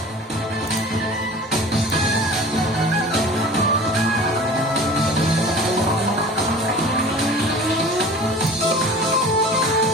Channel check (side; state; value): both; normal; correlation 0.41